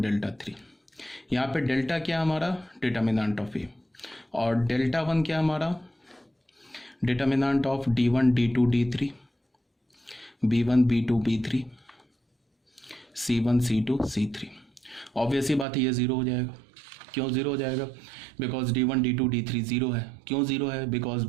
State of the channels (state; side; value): drops out; left; at 15.7 s